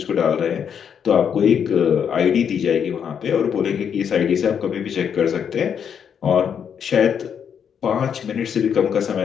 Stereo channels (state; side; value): quieter; right; 7.8 dB